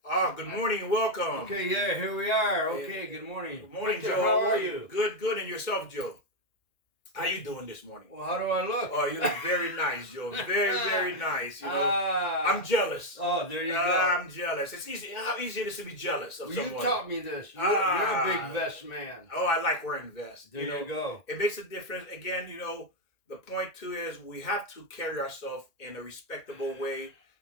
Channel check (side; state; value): right; late; 2.1 ms